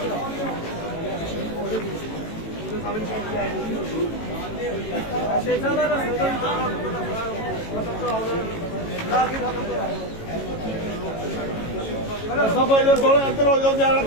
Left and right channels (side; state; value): right; late; 18 ms